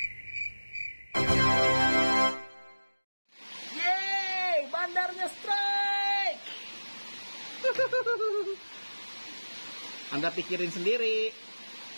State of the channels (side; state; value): both; inverted; correlation -1.00